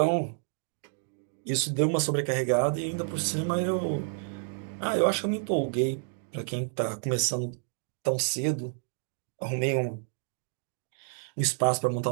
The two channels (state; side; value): silent; left; digital silence